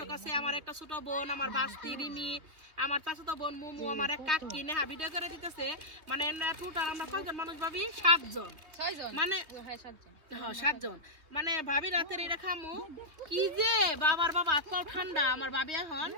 আছে, আমার একটা ছোট বোন, আমার বাস্তি রিমি, আমার চাচাতো বোন মুমু, আমার এক কাকি নেহা ভিডিও করে দিতেছে। মানে টোটাল আমরা কয়জন মানুষ ভাবি? 7 জন, মানে হ্যাঁ 7 জন। মানে ভাবি রাতের এটা খামু কি যে বাবার বাবা এত ঠান্ডা। আমার ভাবি এখন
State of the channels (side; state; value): left; late; 3.2 ms